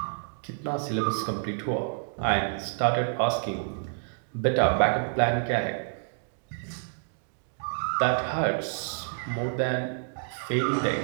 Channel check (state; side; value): silent; left; digital silence